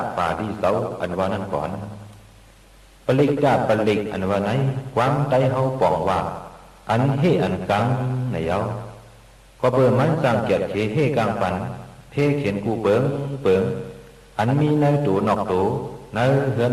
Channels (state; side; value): identical; both; correlation 1.00